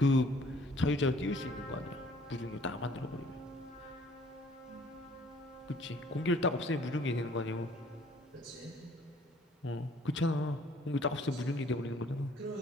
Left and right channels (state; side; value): normal; both; correlation 0.57